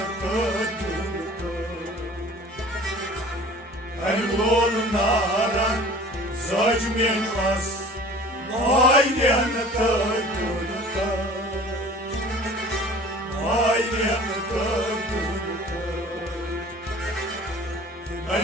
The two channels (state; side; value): normal; both; correlation 0.45